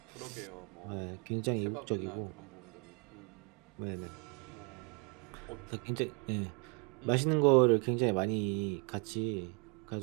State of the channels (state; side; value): quieter; left; 35.3 dB